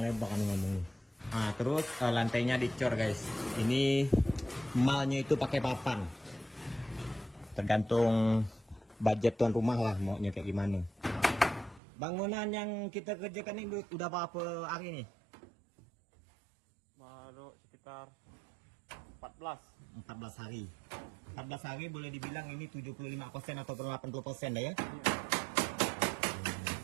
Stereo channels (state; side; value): drops out; left; at 11.8 s